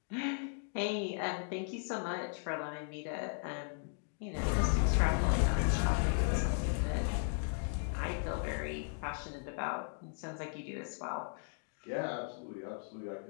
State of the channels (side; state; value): right; silent; 53 dB below the other